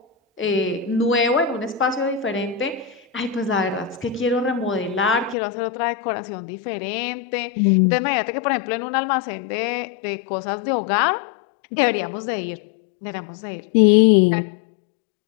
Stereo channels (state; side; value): drops out; right; at 5.4 s